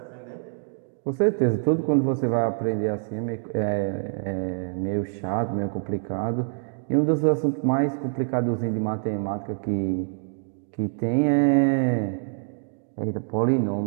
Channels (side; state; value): left; silent; digital silence